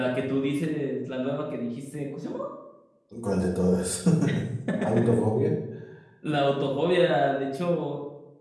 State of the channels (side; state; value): both; identical; correlation 1.00